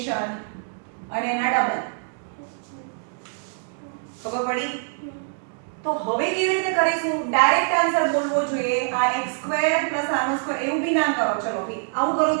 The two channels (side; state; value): left; silent; 62 dB below the other